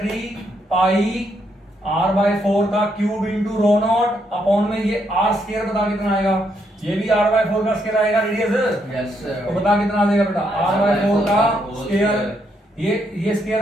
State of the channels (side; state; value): both; normal; correlation 0.76